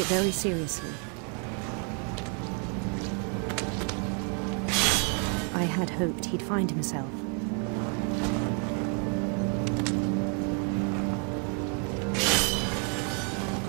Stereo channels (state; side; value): quieter; left; 38.5 dB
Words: very seriously. I had hoped he'd find himself.